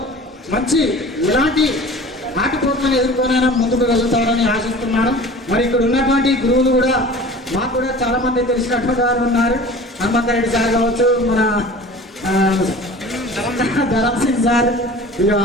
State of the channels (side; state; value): both; normal; correlation 0.41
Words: మంచి ఇలాంటి ఆటపోట్లను ఎదుర్కొనైనా ముందుకు వెళ్తారని ఆశిస్తున్నాను. మరి ఇక్కడ ఉన్నటువంటి గురువులు కూడా మాకు కూడా చాలా మంది తెలిసినటువంటి వారు ఉన్నారు. హనుమంతరెడ్డి సార్ కావచ్చు, మన ధరమ్ సింగ్ సార్, ఇక